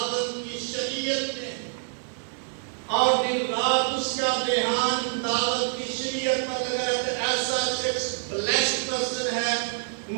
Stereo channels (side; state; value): left; silent; digital silence